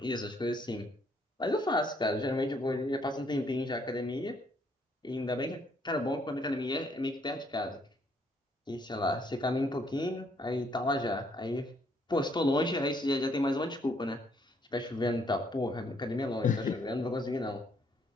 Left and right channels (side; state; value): both; normal; correlation 0.69